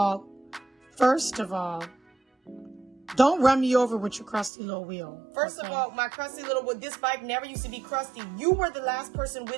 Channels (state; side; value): drops out; left; at 4.5 s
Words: don't run me over with your crusty little wheel. First of all, my crusty little wheel, this bike never used to be crusty. You were the last person